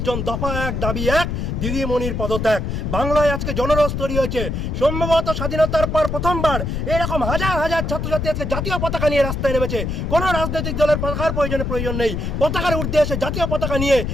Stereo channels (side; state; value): left; noise; rumble, 2 dB below the sound